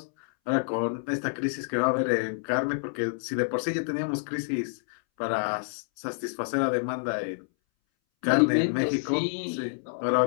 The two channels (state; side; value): silent; right; 59 dB below the other